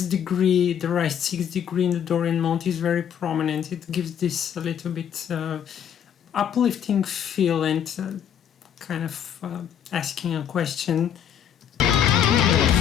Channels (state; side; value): quieter; right; 8.9 dB